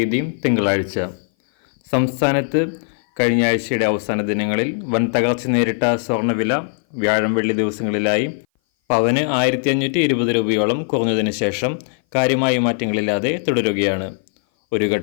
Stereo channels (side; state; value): right; silent; 58 dB below the other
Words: തിങ്കളാഴ്ച. സംസ്ഥാനത്ത് കഴിഞ്ഞ ആഴ്ചയുടെ അവസാന ദിനങ്ങളിൽ വൻ തകർച്ച നേരിട്ട സ്വർണ്ണവില വ്യാഴം വെള്ളി ദിവസങ്ങളിലായി പവന് 1520 രൂപയോളം കുറഞ്ഞതിന് ശേഷം കാര്യമായ മാറ്റങ്ങളില്ലാതെ തുടരുകയാണ്. ഒരു